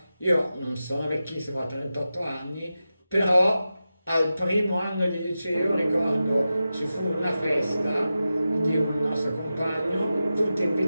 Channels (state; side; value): inverted; both; correlation -0.92